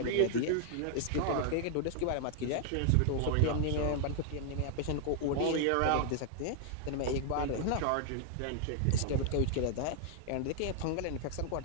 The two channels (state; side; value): different; both; correlation 0.00